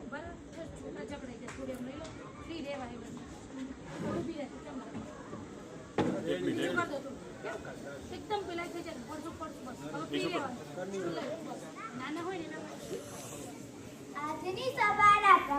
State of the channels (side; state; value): both; identical; correlation 1.00